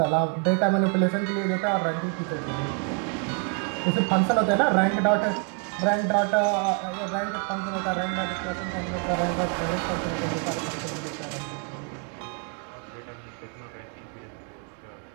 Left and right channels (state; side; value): quieter; left; 34.2 dB